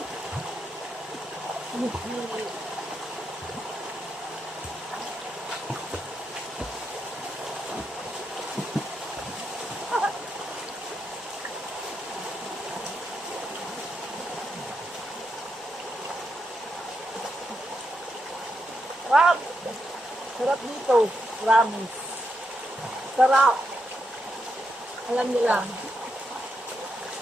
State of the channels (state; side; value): normal; both; correlation 0.82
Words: Wow! Sarap dito. Promise. Sarap. Alam niyo lang.